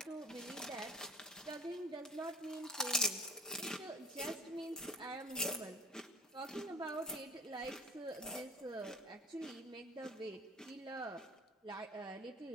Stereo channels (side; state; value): both; normal; correlation 0.41